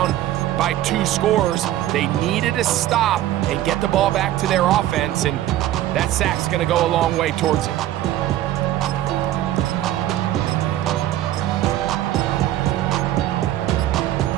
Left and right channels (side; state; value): left; quieter; 13.6 dB